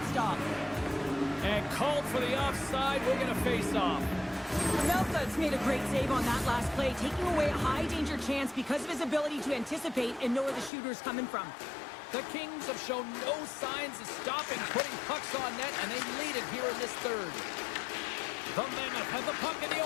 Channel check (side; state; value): right; drops out; at 10.7 s